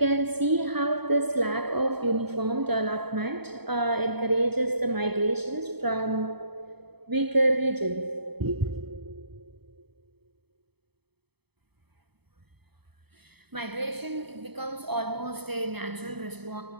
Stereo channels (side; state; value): left; late; 0.98 ms